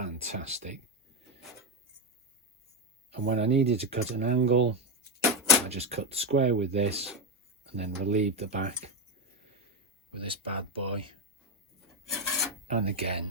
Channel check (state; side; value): normal; both; correlation 0.08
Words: And when I needed to cut an angle, I just cut square with this and then relieved the back with this bad boy. And